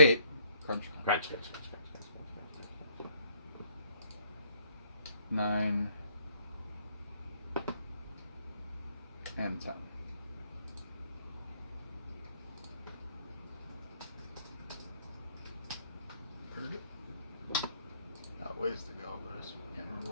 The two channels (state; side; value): inverted; both; correlation -0.66